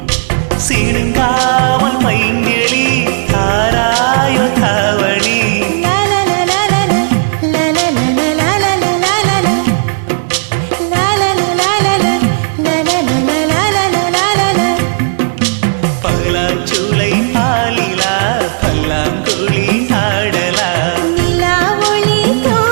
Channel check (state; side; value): silent; left; digital silence